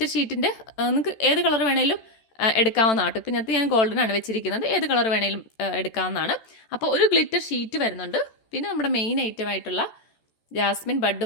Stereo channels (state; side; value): late; right; 14 ms